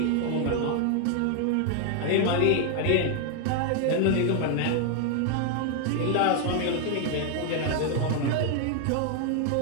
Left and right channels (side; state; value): both; different; correlation 0.00